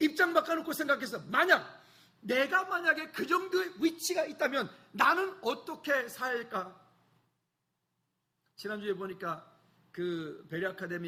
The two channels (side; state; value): both; identical; correlation 1.00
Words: 바꿔놓고 생각해서 내가 만약에 그 정도의 위치가 있다면 나는 어떻게 살까? 지난주에 보니까 그 베리